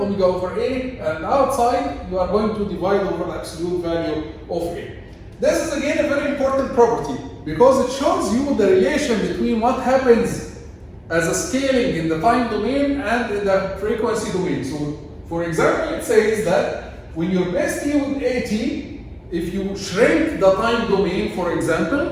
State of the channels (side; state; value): both; identical; correlation 1.00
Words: over a, and outside you are going to divide over the absolute value of a. This is again a very important property because it shows you the relation between what happens as a scaling in the time domain and in the frequency domain. So, for example, it says that when you replace t with at, if you shrink the time domain, for